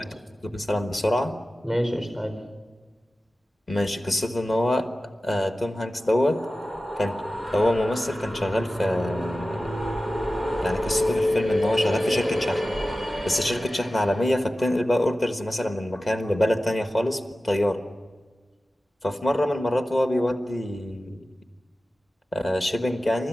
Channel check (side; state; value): both; normal; correlation 0.95